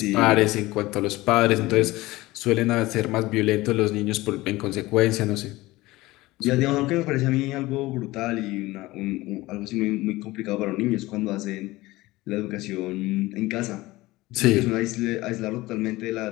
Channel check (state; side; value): quieter; right; 19.3 dB